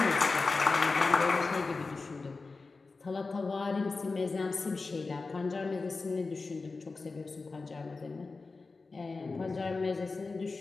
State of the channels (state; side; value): quieter; right; 4.0 dB